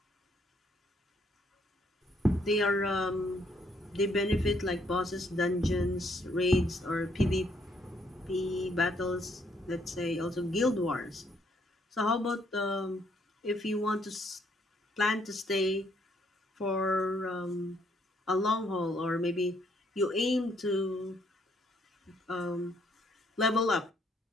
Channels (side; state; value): both; normal; correlation 0.70